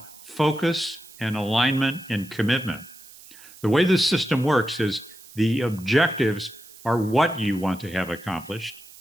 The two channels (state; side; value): noise; right; hiss, 20 dB below the sound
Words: focus and alignment and commitment. The way this system works is the objectives are what you want to have accomplished.